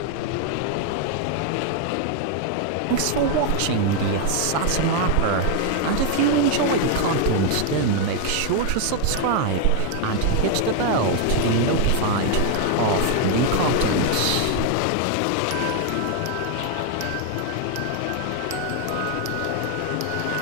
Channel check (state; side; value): different; both; correlation 0.00